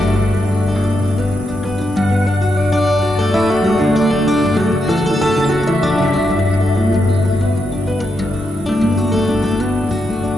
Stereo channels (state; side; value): normal; both; correlation 0.83